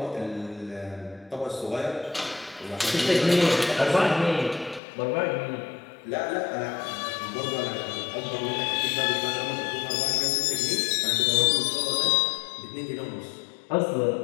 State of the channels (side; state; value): right; drops out; at 4.8 s